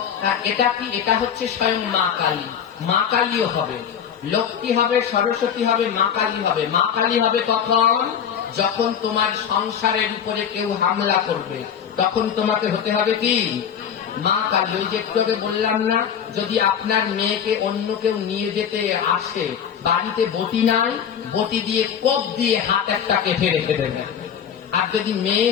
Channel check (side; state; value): right; quieter; 8.1 dB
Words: এটা কি? এটা হচ্ছে স্বয়ং মা কালী। মা কালীও হবে, লক্ষ্মী হবে, সরস্বতী হবে, মা কালী হবে। মা কালী হবে তখন যখন তোমার সংসারের উপরে কেউ হামলা করবে, তখন তোমাকে হতে হবে কি মা কালী। ওই যে একটু বললাম না, যদি আপনার মেয়েকে অন্য কেউ নিয়ে যেতে আসে, বাড়িতে বটি নাই, বটি দিয়ে কোপ দিয়ে হাত একটা কেটে রেখে দেবেন। আর যদি মেয়ে